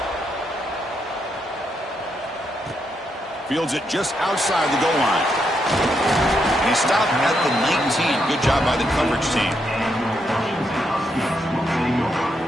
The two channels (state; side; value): normal; both; correlation 0.80